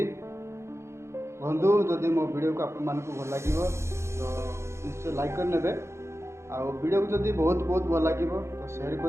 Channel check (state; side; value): late; left; 0.13 ms